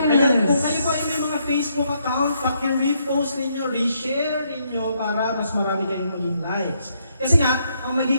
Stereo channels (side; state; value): both; inverted; correlation -0.74